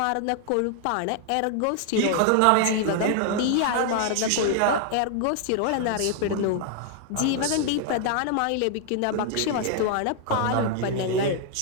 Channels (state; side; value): different; both; correlation 0.00